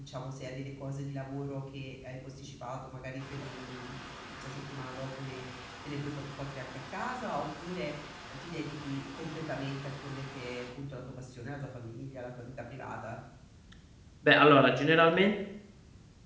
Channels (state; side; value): identical; both; correlation 1.00